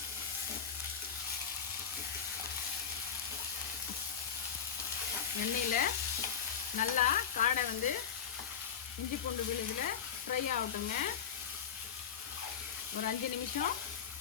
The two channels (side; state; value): right; quieter; 7.8 dB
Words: எண்ணெயில் நல்லா காடை இஞ்சி பூண்டு விழுதில் ஃப்ரை ஆகட்டுங்க. ஒரு 5 நிமிஷம்